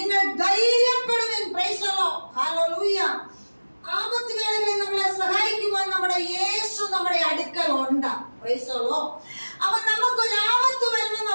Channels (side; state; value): both; inverted; correlation -1.00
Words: ധൈര്യപ്പെടുവിൻ. Praise the lord. ഹല്ലേലൂയ. ആപത്ത് വേളകളിൽ നമ്മളെ സഹായിക്കുവാൻ നമ്മുടെ യേശു നമ്മുടെ അടുക്കൽ ഉണ്ട്. Praise the lord. അവൻ നമുക്കൊരു ആപത്ത് വരുമ്പോൾ